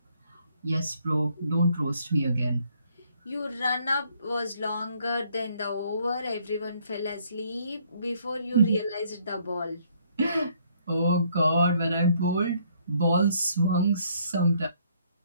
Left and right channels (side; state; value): both; inverted; correlation -0.66